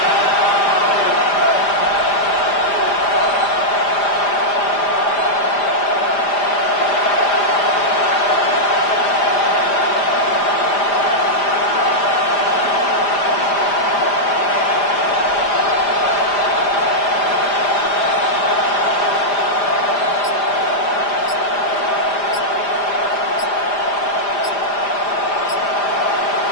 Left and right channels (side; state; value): right; late; 5.0 ms